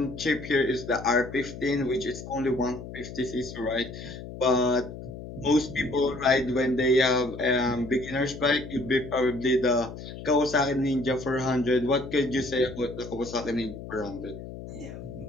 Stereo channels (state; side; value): noise; left; hum, 11 dB below the sound